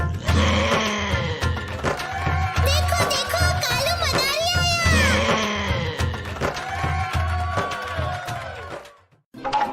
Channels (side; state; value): both; identical; correlation 1.00